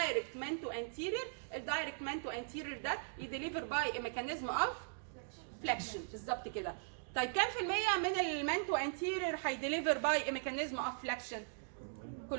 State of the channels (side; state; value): left; silent; digital silence